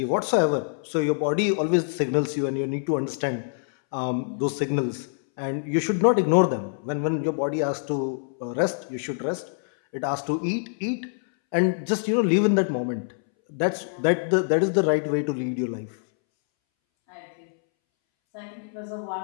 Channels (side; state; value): right; silent; 62 dB below the other